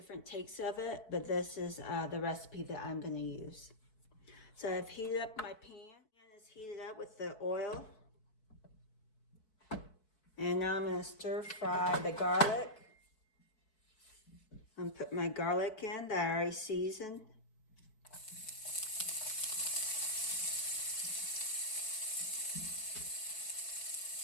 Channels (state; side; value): late; right; 4.6 ms